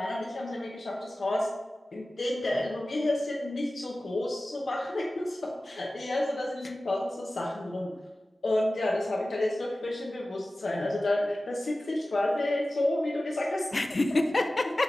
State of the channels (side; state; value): both; normal; correlation 0.96